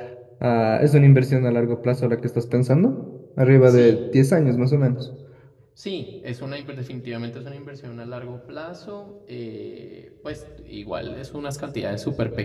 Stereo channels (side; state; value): both; identical; correlation 1.00